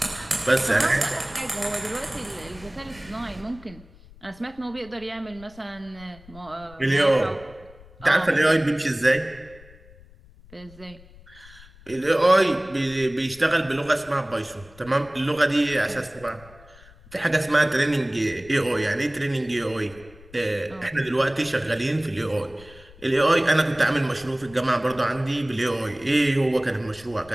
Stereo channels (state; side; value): noise; left; rumble, 23 dB below the sound